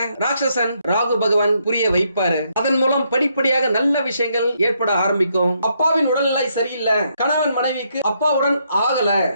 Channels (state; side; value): inverted; both; correlation -0.75